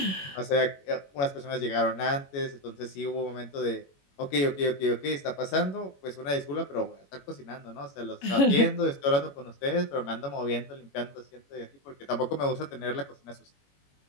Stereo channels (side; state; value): right; late; 21 ms